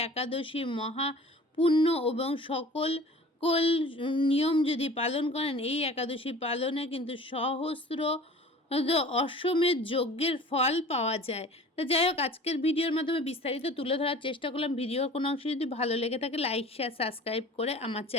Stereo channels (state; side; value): normal; both; correlation 0.44